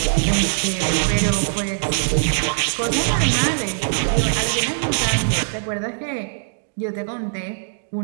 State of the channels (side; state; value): left; silent; digital silence